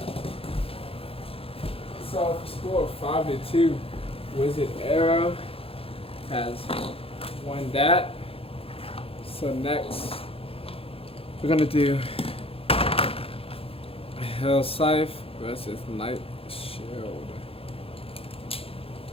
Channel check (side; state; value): right; late; 0.27 ms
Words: So score 5-2. Wizard Arrow has won that. So next, we're gonna do Hell Scythe versus Night Shield.